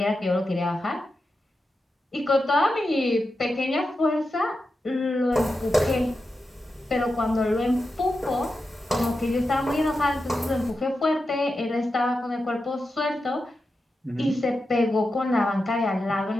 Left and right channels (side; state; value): both; normal; correlation 0.90